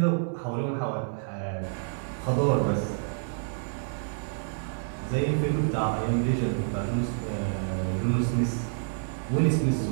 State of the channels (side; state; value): left; silent; 59 dB below the other